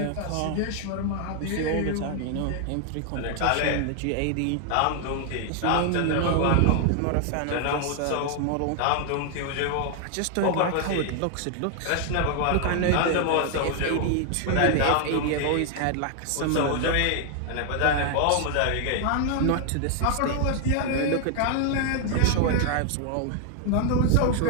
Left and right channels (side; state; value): both; different; correlation 0.00